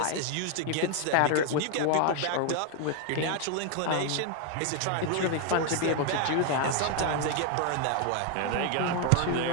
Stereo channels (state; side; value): different; both; correlation 0.01